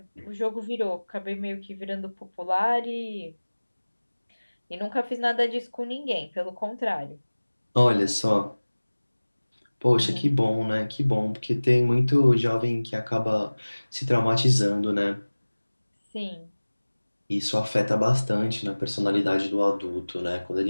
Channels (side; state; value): both; inverted; correlation -1.00